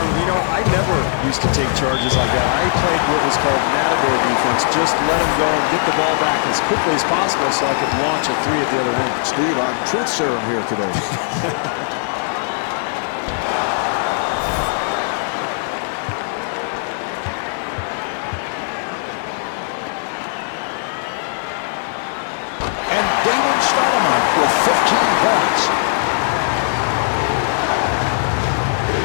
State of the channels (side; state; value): right; silent; digital silence